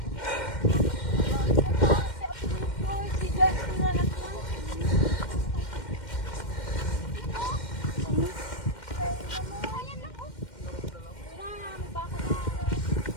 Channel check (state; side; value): late; right; 2.1 ms